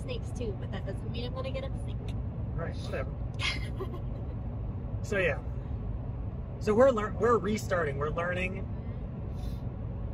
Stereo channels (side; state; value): both; identical; correlation 1.00